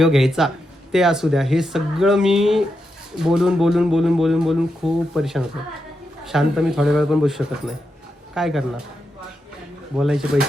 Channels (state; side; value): normal; both; correlation 0.86